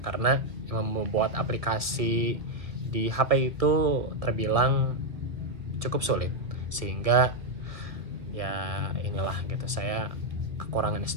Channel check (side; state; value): left; late; 1.7 ms